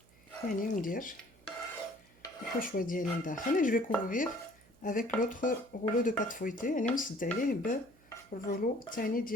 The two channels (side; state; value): right; noise; hum, 28 dB below the sound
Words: يعني ندير الحشوه ديالي لداخل. اي جو في كوفرير افيك لوطر رولو دو بات فويتي يعني نسد عليه بالرولو الثاني